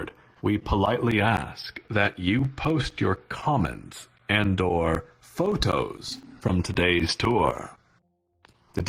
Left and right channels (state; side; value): identical; both; correlation 1.00